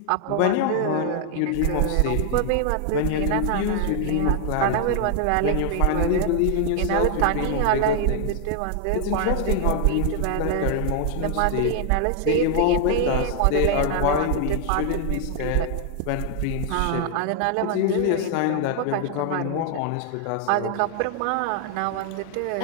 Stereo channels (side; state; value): both; different; correlation 0.00